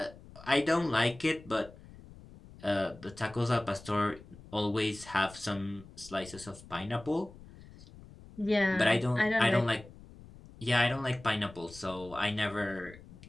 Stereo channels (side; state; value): left; noise; rumble, 19 dB below the sound